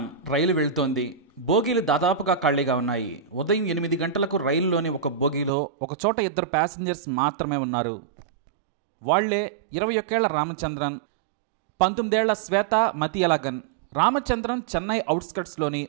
రైలు వెళ్తోంది. బోగీలు దాదాపుగా ఖాళీగా ఉన్నాయి. ఉదయం 8 గంటలకు రైలులోని ఒక బోగీలో ఒకచోట ఇద్దరు ప్యాసింజర్స్ మాత్రమే ఉన్నారు. వాళ్లే 21 ఏళ్ల రామచంద్రన్, 19 ఏళ్ల శ్వేత మతియలగన్. రామచంద్రన్ చెన్నై అవుట్స్కట్స్లోని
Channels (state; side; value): drops out; left; at 5.5 s